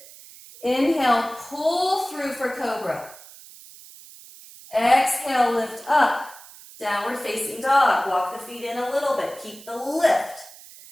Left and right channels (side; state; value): right; noise; hiss, 19 dB below the sound